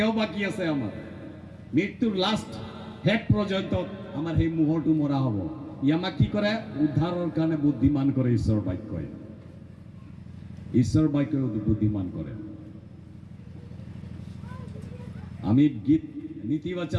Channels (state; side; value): identical; both; correlation 1.00